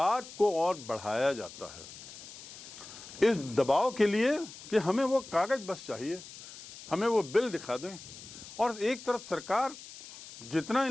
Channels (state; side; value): noise; left; hiss, 15 dB below the sound